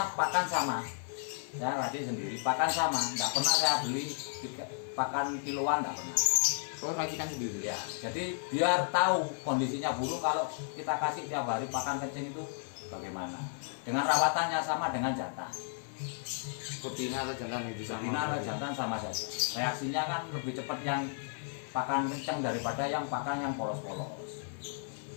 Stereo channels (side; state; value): right; silent; 55 dB below the other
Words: pakan sama. Saya latih sendiri, pakan sama, nggak pernah saya beli pakan kiloan, nggak pernah. Kalau racikan sendiri. Ya, jadi biar tahu kondisinya burung kalau kita kasih tiap hari pakan kencing itu bagaimana. Dengan rawatannya sama dengan jantan. Betina atau jantan itu sama. Betina atau jantan sama saja. Reaksinya kan lebih cepat yang pakan kencang daripada yang pakan yang polos-polos.